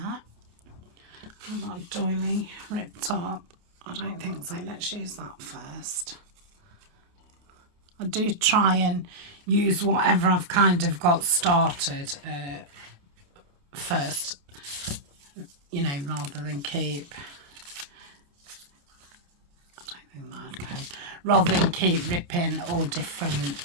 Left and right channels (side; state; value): left; late; 28 ms